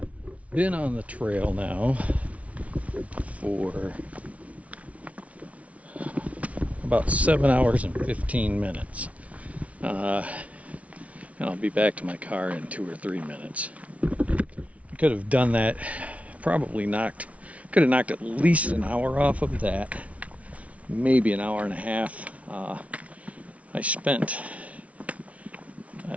been on the trail now for about 7 hours and 15 minutes, and I'll be back to my car in 2 or 3 minutes. I could have done that, could have knocked at least an hour off of that, maybe an hour and a half. I spent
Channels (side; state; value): left; late; 0.066 ms